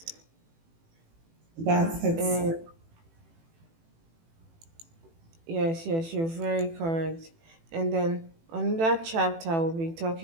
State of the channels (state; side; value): late; left; 18 ms